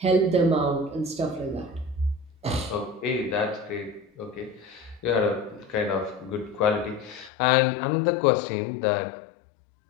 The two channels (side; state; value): right; drops out; at 7.3 s